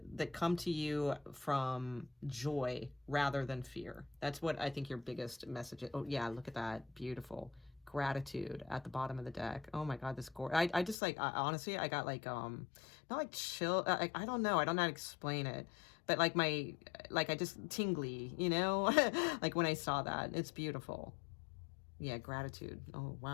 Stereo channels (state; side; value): drops out; right; at 11.0 s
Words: come to you from joy rather than fear. That's what I think your biggest message is. Oh, yeah, look at that. Beautiful. Gratitude at the bottom of the deck. Oh my God, this I just like, honestly, I got like, not like chill, I don't know, I don't know how to explain it, but like I just tingly, you know, like when I saw that. It's beautiful. Yeah, gratitude. Oh